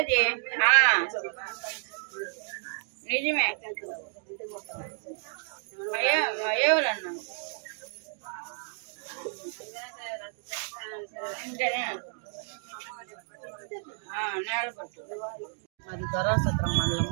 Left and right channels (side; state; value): left; silent; 57 dB below the other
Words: నిజమే ఎవరన్నా మాది దొరాసత్రం